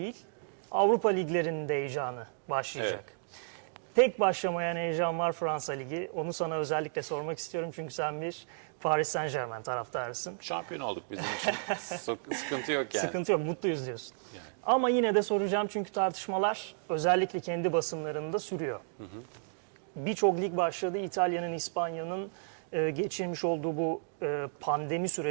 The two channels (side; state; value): left; silent; digital silence